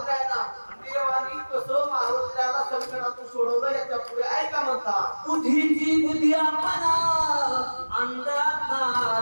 देवानी कसं मारुतीरायाला संकटातून सोडवलं याच्या पुढे ऐका म्हणता. बुद्धीची बुद्धी आपणा अंतरात्मा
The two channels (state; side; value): inverted; both; correlation -1.00